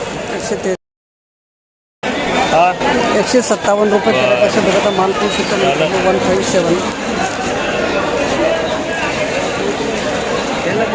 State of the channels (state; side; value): identical; both; correlation 1.00